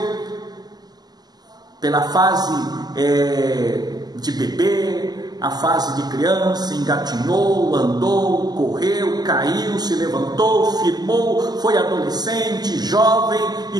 pela fase de bebê, a fase de criança, engatinhou, andou, correu, caiu, se levantou, firmou, foi adolescente, jovem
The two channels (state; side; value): late; left; 0.20 ms